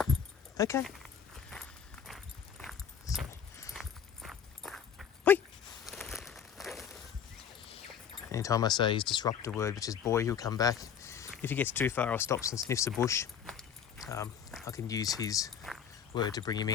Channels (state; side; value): quieter; right; 7.8 dB